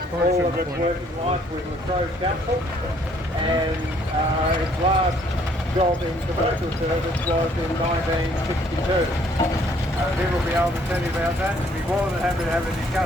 all of its working life with La Trobe Council, and its last job in commercial service was in 1962. He will be able to tell you about that. He'll be more than happy to have a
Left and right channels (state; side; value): normal; both; correlation 0.63